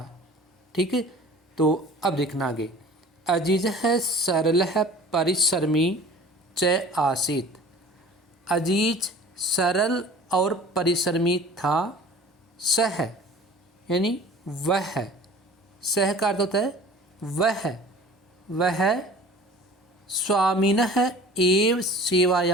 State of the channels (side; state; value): both; normal; correlation 0.44